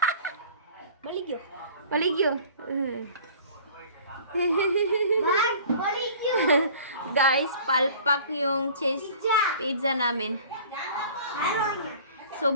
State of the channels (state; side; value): inverted; both; correlation -0.47